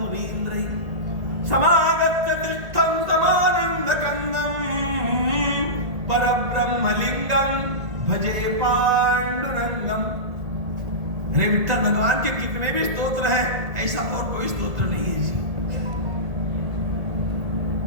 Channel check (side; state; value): left; late; 1.7 ms